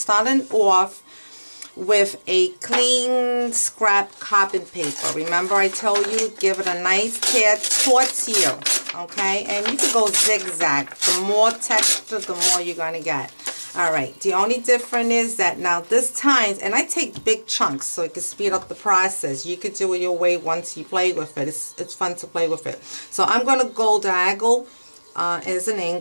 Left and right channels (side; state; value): both; inverted; correlation -1.00